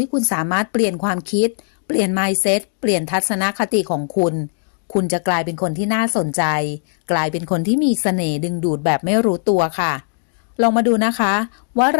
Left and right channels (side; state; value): right; silent; digital silence